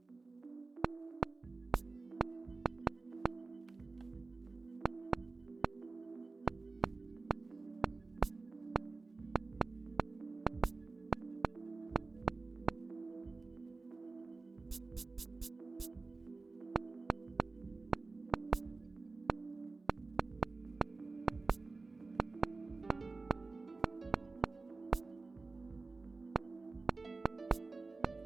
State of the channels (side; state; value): left; quieter; 3.8 dB